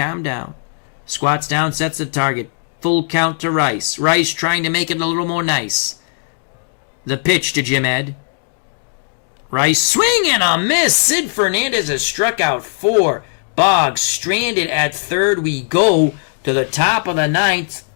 down. Squats down, sets the target. Full count to Rice. Rice trying to make it a little more nice. The pitch to Jim Ed. Rice swing and a miss. Sid Fernandez has struck out 4. Boggs stranded at third. We go to the top of the 9th.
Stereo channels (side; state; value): right; silent; digital silence